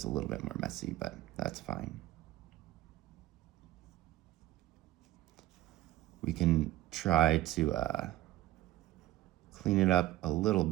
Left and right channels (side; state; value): left; quieter; 15.6 dB